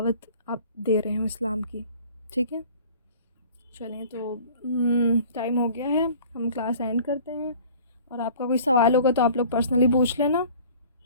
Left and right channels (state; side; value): inverted; both; correlation -0.48